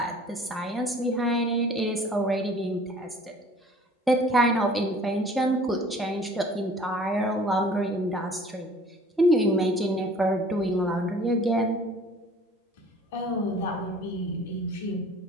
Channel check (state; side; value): normal; both; correlation 0.50